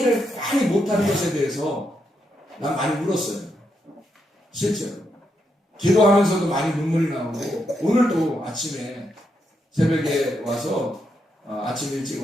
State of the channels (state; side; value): normal; both; correlation 0.81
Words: 많이 못하는 것에 대해서 난 많이 울었어요. 실제로. 기도하면서도 많이 눈물이 나오고, 오늘도 아침에 새벽에 와서, 아침 일찍